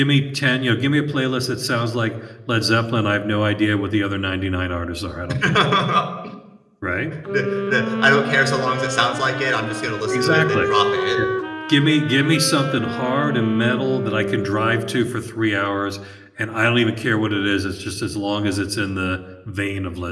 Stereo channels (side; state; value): both; identical; correlation 1.00